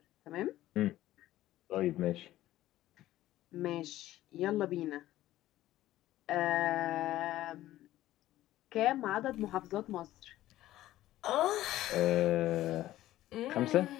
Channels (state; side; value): quieter; right; 14.7 dB